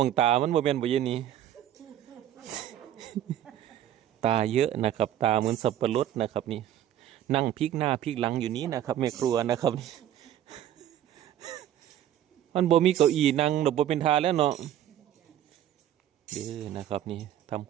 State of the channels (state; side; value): quieter; left; 11.4 dB